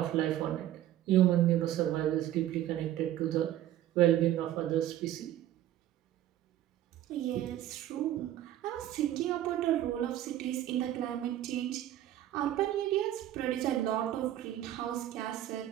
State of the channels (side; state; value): left; quieter; 12.8 dB